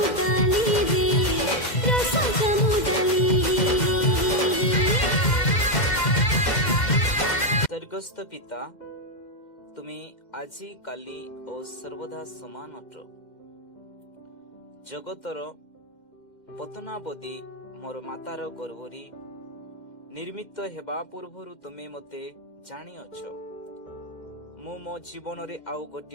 डाली रे रस जामो डाली। स्वर्गस्थ पिता तुम्ही आजी काली ओ सर्वदा समान अट जगतर पतनावधि मोर मातार गर्भरी निर्मित हेबा पूर्वरु तुमे मते जानी अछ। मु मो जीवन रे आउ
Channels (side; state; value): right; late; 2.1 ms